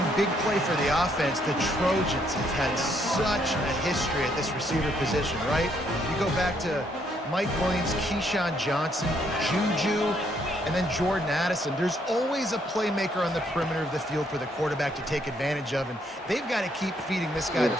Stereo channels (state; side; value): normal; both; correlation 0.71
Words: Big play for the offense. The Trojans have had such a history at this receiver position, right? You go back to Mike Williams, Keyshawn Johnson, Juju, and then Jordan Addison. There's always a playmaker on the perimeter of the field for the quarterback to take advantage of, and they've got to keep feeding this guy the